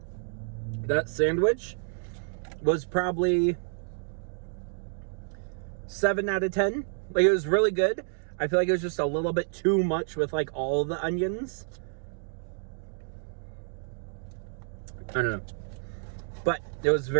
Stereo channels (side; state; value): left; silent; 58 dB below the other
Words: that sandwich was probably 7 out of 10. Like, it was really good. I feel like it was just a little bit too much with like all the onions. I don't know. But it was